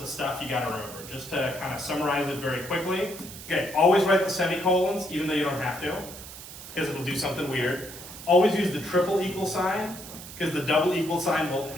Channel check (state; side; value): noise; right; hiss, 13 dB below the sound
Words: of stuff you gotta remember. Just to kind of summarize it very quickly. Okay, always write the semicolons, even though you don't have to, because it'll do something weird. Always use the triple equal sign, because the double equal sign will